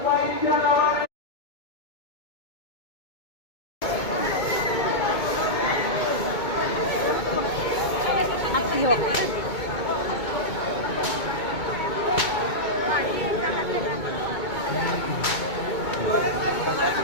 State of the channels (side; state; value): right; late; 2.2 ms